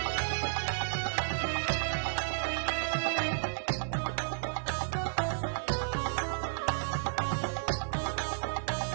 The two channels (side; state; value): left; silent; digital silence